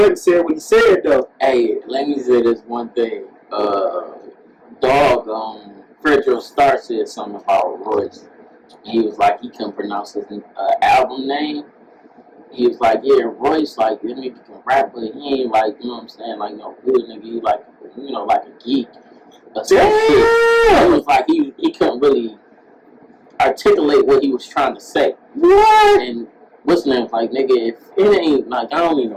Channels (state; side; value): identical; both; correlation 1.00